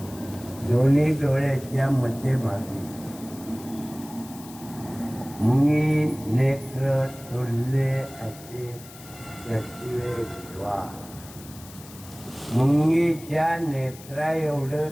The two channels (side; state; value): left; noise; hiss, 18 dB below the sound